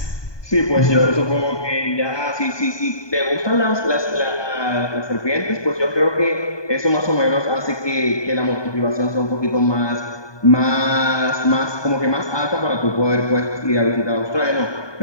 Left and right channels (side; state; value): right; late; 1.2 ms